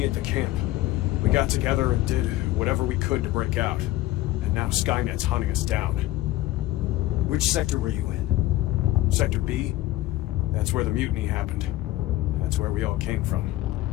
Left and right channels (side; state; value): right; quieter; 16.4 dB